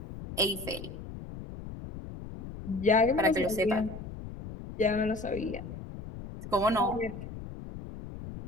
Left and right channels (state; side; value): noise; left; rumble, 11 dB below the sound